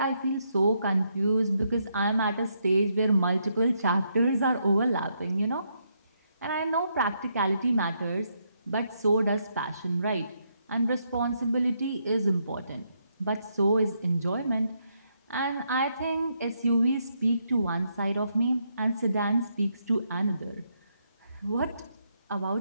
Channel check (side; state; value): both; inverted; correlation -0.77